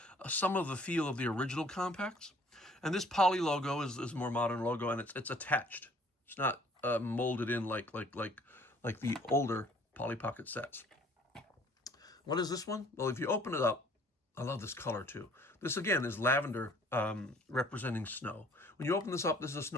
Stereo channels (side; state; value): both; normal; correlation 0.57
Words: some of the feel of the original compacts. And this Polly logo is a more modern logo, and it's attached. It's not molded in like the older Polly Pocket sets. What is this one? Well, if you open it up, I love this color too. This again is lavender representing snow. When you open this up, this is a